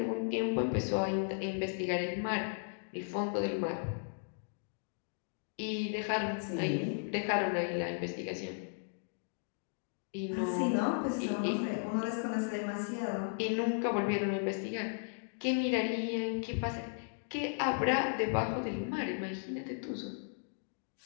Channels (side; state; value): right; silent; digital silence